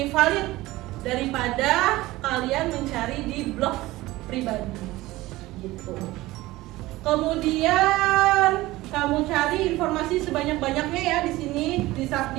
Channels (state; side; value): quieter; left; 18.4 dB